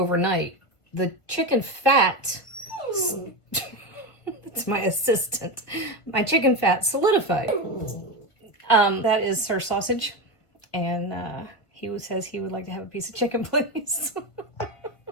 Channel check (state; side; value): late; right; 1.5 ms